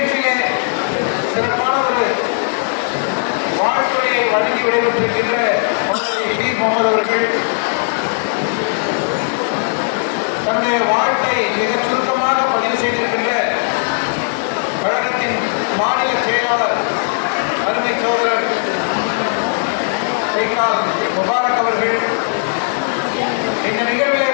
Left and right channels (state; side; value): silent; right; digital silence